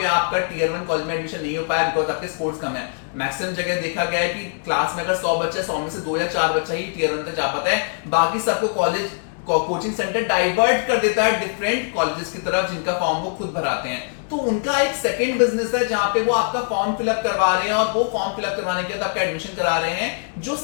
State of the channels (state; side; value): silent; right; digital silence